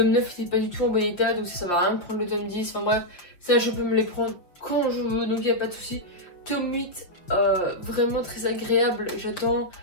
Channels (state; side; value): late; right; 5.8 ms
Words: 9 n'était pas du tout en bon état, donc ça va rien de prendre le tome 10. Enfin bref, ça je peux me les prendre quand je veux, donc il n'y a pas de souci. Tome 8, vraiment très agréable, j'attends